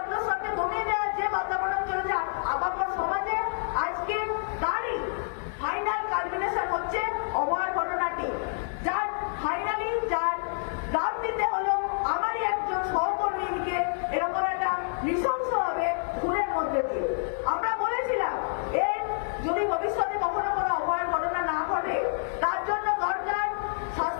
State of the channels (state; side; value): silent; right; 59 dB below the other